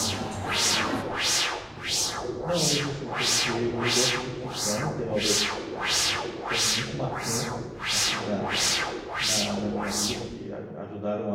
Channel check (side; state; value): both; identical; correlation 1.00